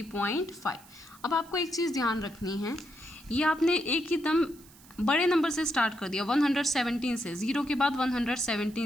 अब आपको एक चीज़ ध्यान रखनी है, ये आपने एक ही दम बड़े नंबर से स्टार्ट कर दिया 117 से, 0 के बाद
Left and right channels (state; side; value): noise; right; hiss, 24 dB below the sound